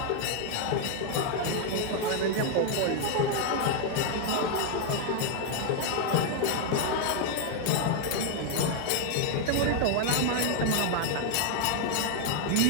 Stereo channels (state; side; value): different; both; correlation 0.00